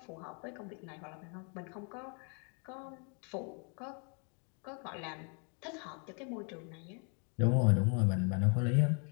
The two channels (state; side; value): quieter; right; 38.7 dB